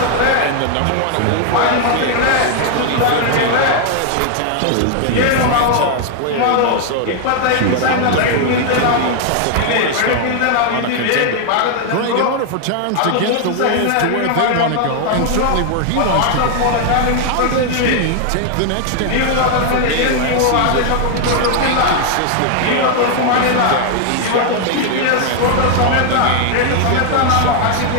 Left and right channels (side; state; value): both; different; correlation 0.00